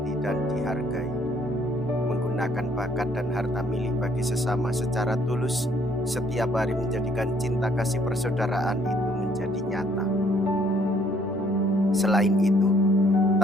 dan dihargai, menggunakan bakat dan harta milik bagi sesama secara tulus, setiap hari menjadikan cinta kasih persaudaraan itu menjadi nyata. Selain itu,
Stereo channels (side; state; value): both; normal; correlation 0.64